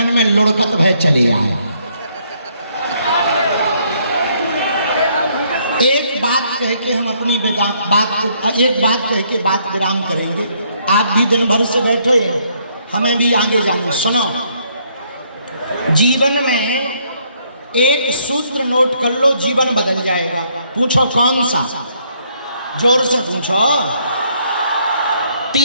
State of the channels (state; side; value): inverted; both; correlation -0.69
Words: में लुढ़कत भय चले आए। एक बात कह के हम अपनी बात कह के बात विराम करेंगे। आप भी दिन भर से बैठे हो, हमें भी आगे जाना। सुनो, जीवन में एक सूत्र नोट कर लो, जीवन बदल जाएगा। पूछो कौन सा? जोर से पूछो।